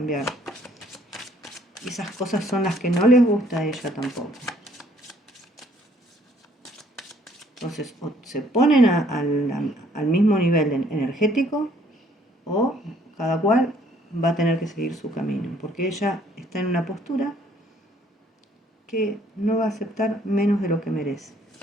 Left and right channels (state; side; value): normal; both; correlation 0.63